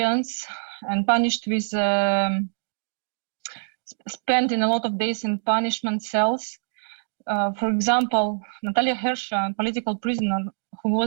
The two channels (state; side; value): silent; left; digital silence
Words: and punished with spending a lot of days in punishment cells. For example, Natalia Hersha, a political prisoner who